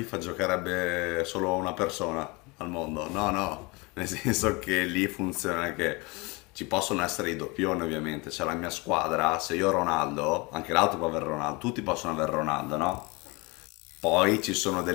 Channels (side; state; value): right; quieter; 26.5 dB